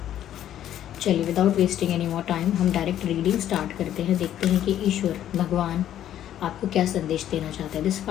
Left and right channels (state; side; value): quieter; right; 11.4 dB